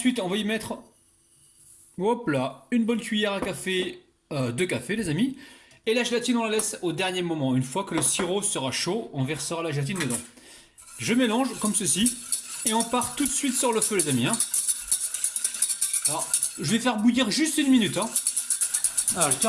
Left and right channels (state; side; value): identical; both; correlation 1.00